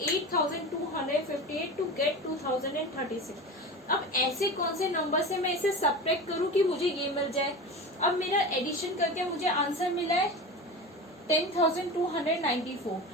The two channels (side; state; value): both; normal; correlation 0.29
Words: 8,258 to get 2036। अब ऐसे कौन से नंबर से मैं इसे सब्ट्रैक्ट करूं कि मुझे ये मिल जाए। अब मेरा एडिशन करके मुझे आंसर मिला है 10,294।